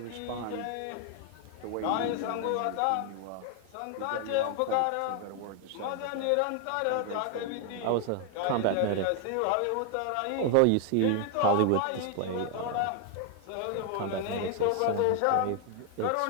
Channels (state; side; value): different; both; correlation 0.00